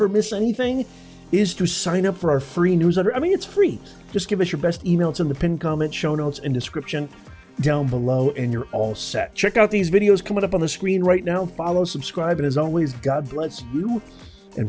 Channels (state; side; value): identical; both; correlation 1.00